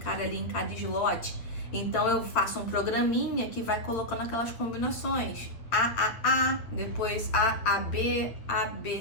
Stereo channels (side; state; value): right; late; 8.7 ms